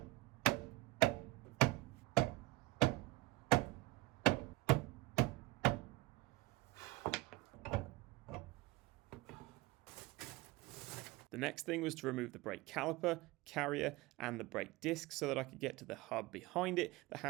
The next thing was to remove the brake caliper, carrier, and the brake disc so that I could get to the hub behind it that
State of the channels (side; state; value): left; quieter; 20.5 dB